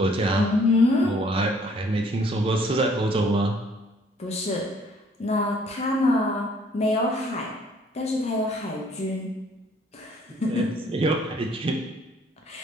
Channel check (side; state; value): both; normal; correlation 0.61